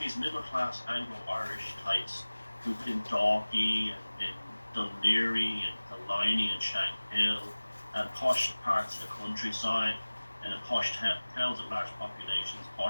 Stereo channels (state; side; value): inverted; both; correlation -1.00